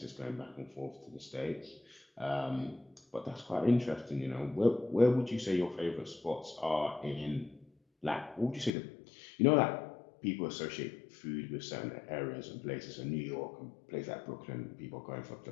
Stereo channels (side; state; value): right; drops out; at 8.7 s